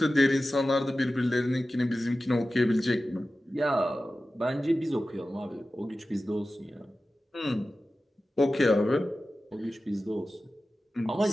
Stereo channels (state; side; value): normal; both; correlation 0.95